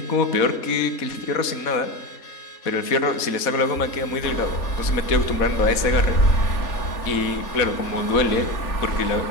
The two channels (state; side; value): late; right; 4.1 ms